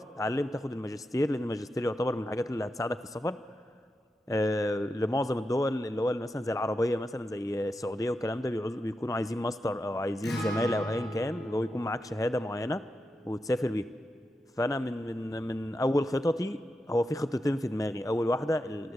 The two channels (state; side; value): normal; both; correlation 0.88